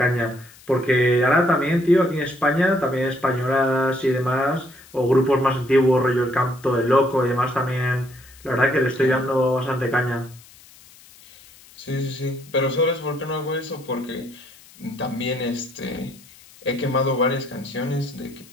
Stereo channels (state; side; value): noise; left; hiss, 24 dB below the sound